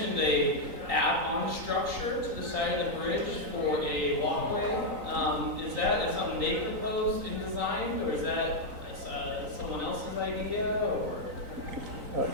a add-on structure to the side of the bridge for a walkway. Is that something they proposed and designed, or is that someone else's idea, or?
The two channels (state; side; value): late; left; 3.9 ms